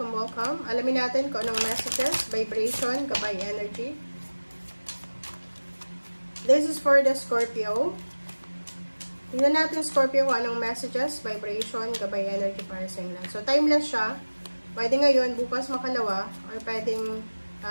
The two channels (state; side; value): inverted; both; correlation -1.00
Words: Alamin natin kung anong messages, vibration, gabay energy. This is for the Scorpio. Tingnan natin Scorpio kung anong messages, vibration, gabay energy para sa inyo. So timeless siya. Pwede ngayon, bukas makalawa, or pwedeng